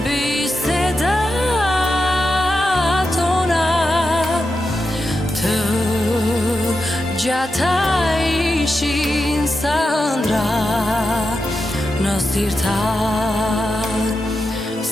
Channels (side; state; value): both; normal; correlation 0.89